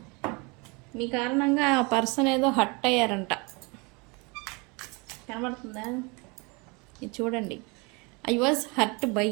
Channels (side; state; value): left; quieter; 28.8 dB